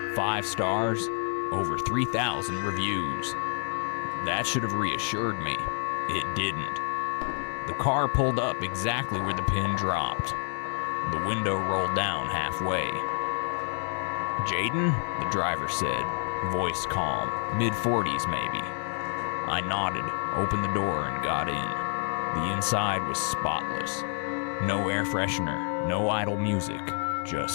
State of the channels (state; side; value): silent; right; 59 dB below the other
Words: 5 stars, over 3,000 reviews. That should have reassured me. It didn't. The car pulled up exactly where the pin dropped. The window rolled down halfway. "Jaden?" the driver said, voice calm, mid-40s maybe. I nodded, opened the door, and got in. The inside was spotless. No air freshener, no idle music,